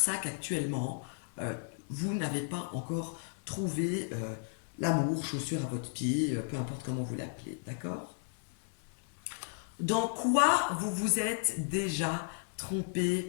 qu'actuellement, vous n'avez pas encore trouvé l'amour, chaussure à votre pied, peu importe comment vous l'appelez. D'accord? Dans quoi vous vous êtes déjà trompé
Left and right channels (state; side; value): silent; right; digital silence